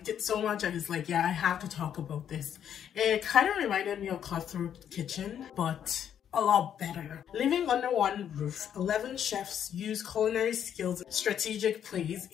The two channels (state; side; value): quieter; right; 9.2 dB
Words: it so much. I was like, yeah, I have to talk about this. It kind of reminded me of Cutthroat Kitchen, but a lot better. Living under one roof, 11 chefs use culinary skills and strategic plays